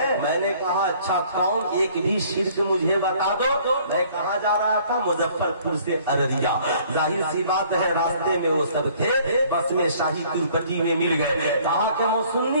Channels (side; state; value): both; inverted; correlation -0.57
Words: मैंने कहा अच्छा कौन, एक भी शिर्क मुझे बता दो। मैं कहा जा रहा था, मुजफ्फरपुर से अररिया। जाहिर सी बात है रास्ते में वो सब थे, बस में शाही तिरुपति में मिल गए। कहा कि वो